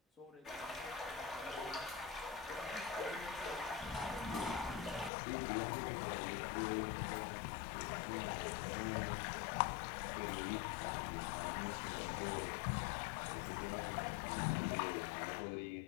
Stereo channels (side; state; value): right; drops out; at 5.1 s